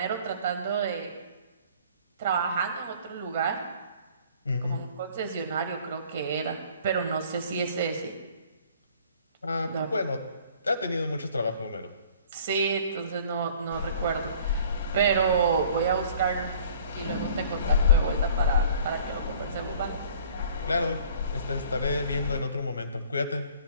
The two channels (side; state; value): both; inverted; correlation -0.52